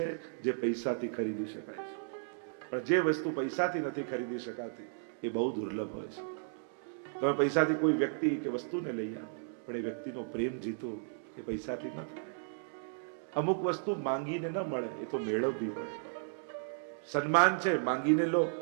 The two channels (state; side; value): silent; left; digital silence